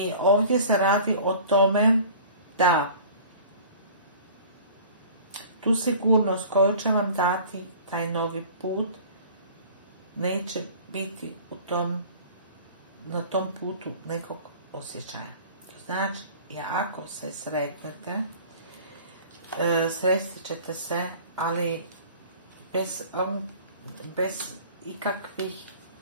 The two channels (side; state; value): both; inverted; correlation -0.45